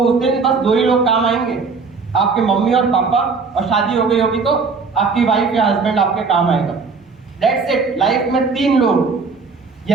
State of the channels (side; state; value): left; quieter; 4.7 dB